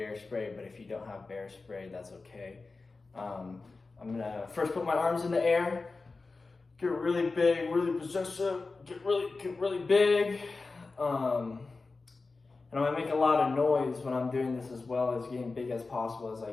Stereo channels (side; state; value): right; quieter; 3.9 dB